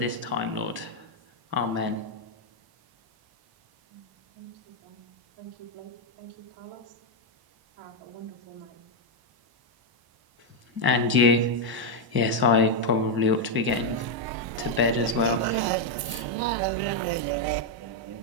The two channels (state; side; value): late; left; 1.0 ms